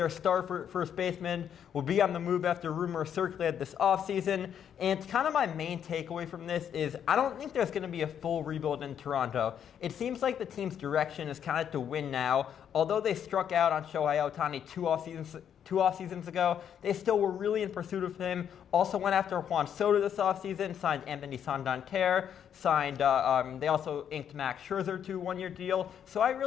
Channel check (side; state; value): right; quieter; 8.8 dB